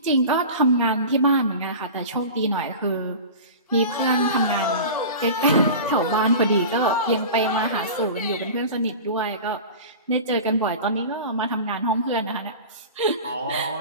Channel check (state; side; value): inverted; both; correlation -0.33